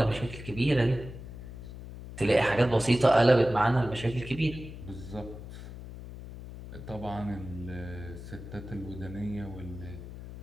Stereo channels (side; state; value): left; noise; hum, 12 dB below the sound